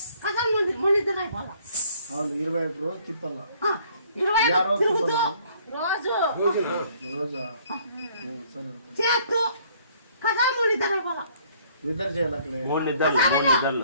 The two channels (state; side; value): inverted; both; correlation -0.61